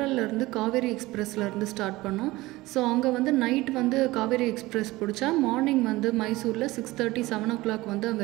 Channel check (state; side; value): quieter; left; 19.4 dB